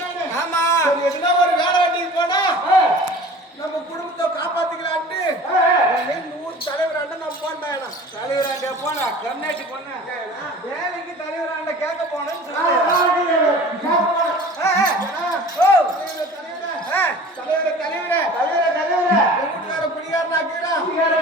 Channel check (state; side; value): normal; both; correlation 0.42